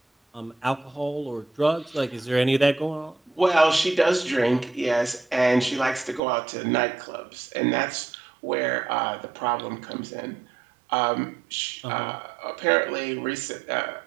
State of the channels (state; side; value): drops out; left; at 6.2 s